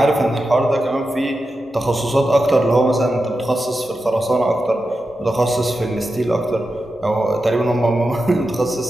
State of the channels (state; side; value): normal; both; correlation 0.90